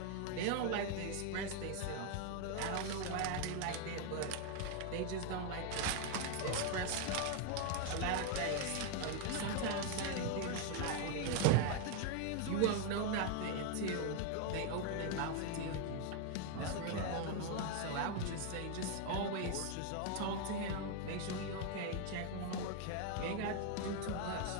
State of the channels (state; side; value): different; both; correlation 0.01